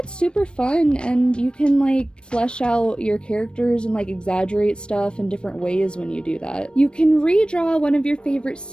super fun, and you can like flesh out your characters and like exaggerate stuff in different ways when you do that. You can redraw one of your favorite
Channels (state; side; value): late; right; 0.055 ms